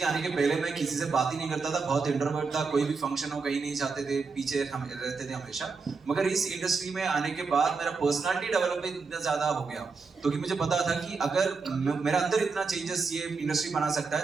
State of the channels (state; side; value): quieter; left; 4.7 dB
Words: आने के पहले मैं किसी से बात ही नहीं करता था, बहुत इंट्रोवर्ट था, कोई भी फंक्शन हो कहीं नहीं जाते थे, पीछे रहते थे हमेशा. मगर इस इंडस्ट्री में आने के बाद मेरा पर्सनालिटी डेवलपमेंट इतना ज्यादा हो गया, तो कि मुझे पता था कि अगर मेरा अंदर इतना चेंजेस ये इंडस्ट्री बना सकता है